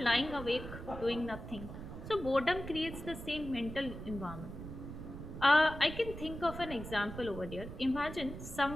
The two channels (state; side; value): noise; right; rumble, 10 dB below the sound